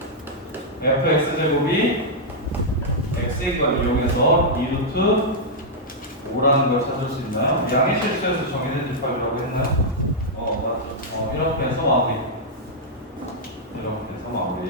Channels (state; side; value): normal; both; correlation -0.07